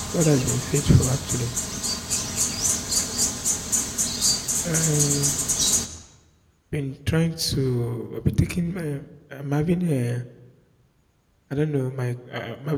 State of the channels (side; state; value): both; identical; correlation 1.00